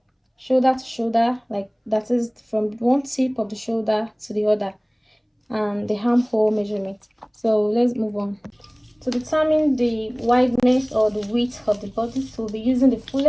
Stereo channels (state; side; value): identical; both; correlation 1.00